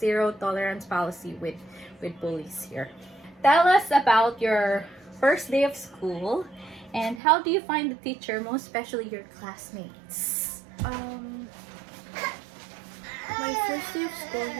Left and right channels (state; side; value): drops out; left; at 7.2 s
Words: tolerance policy with bullies here. Tell us about your first day of school and how do you find the teacher, most especially your classmates? My first day of school